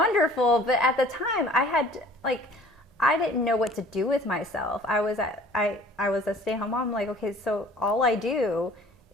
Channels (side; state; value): both; normal; correlation 0.50